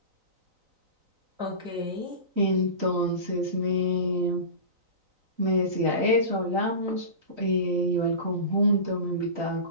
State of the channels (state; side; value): late; left; 3.9 ms